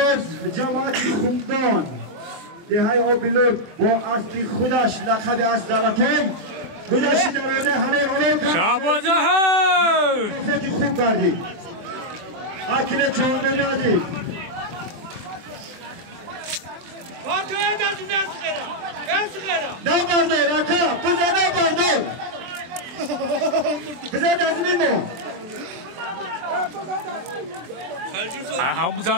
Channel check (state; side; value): late; left; 24 ms